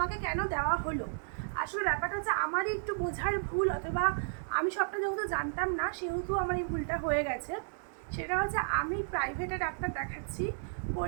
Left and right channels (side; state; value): left; silent; digital silence